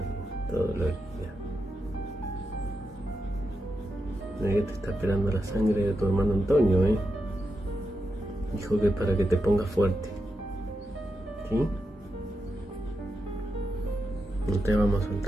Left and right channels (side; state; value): both; normal; correlation 0.87